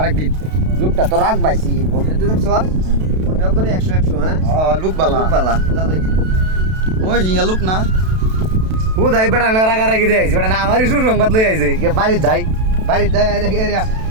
লোকটা তো রাখ পাইছি বলতে তুই দেখছ মনে করে 100 100 হ্যাঁ লুক বালা লোক বালা যা দেখি ওই হিঙ্গা লুক না ও দাই বেড়া রাখা রাখি দিয়ে আইছি বেড়া না আমারই সুসংবাদ লই আইছে কে বাড়ি যাই এরিয়া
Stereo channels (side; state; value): left; late; 32 ms